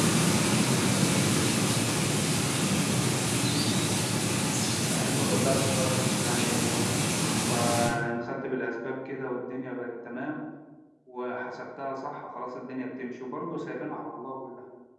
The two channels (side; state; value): both; identical; correlation 1.00